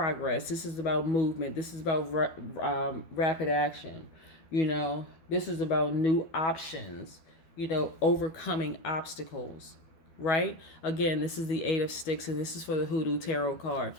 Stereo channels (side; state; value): right; late; 12 ms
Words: This is about movement. This is about rapid action. This is about new options, overcoming obstacles. Right? Again, this is the Eight of Sticks, and this is for the Hoodoo Tarot card.